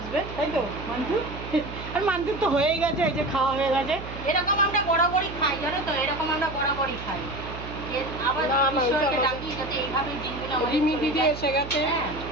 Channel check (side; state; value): right; noise; hum, 11 dB below the sound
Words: তাই তো মান্টু? আর মান্টুর তো হয়েই গেছে, এই যে খাওয়া হয়ে গেছে। এরকম আমরা বরাবরই খাই, জানো তো, এরকম আমরা বরাবরই খাই। আবার ঈশ্বরকে ডাকি যাতে এইভাবে দিনগুলো রিমি দিদি এসে গেছে।